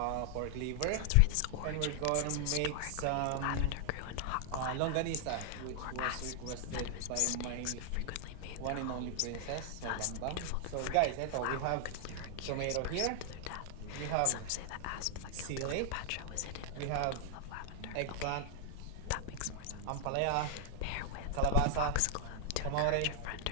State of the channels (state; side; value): different; both; correlation 0.00